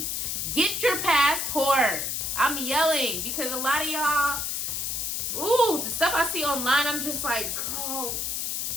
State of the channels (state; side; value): noise; left; hiss, 1 dB below the sound